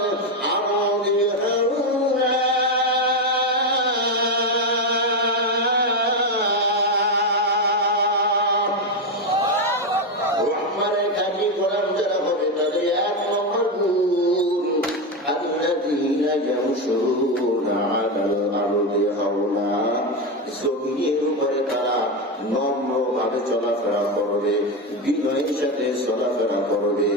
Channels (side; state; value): both; normal; correlation 0.10